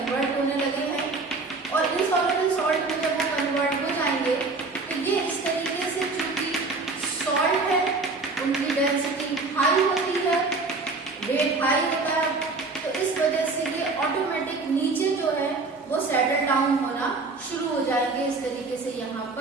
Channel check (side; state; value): left; quieter; 3.7 dB